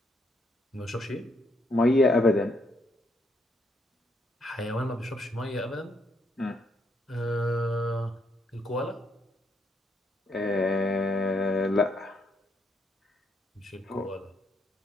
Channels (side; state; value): both; normal; correlation 0.74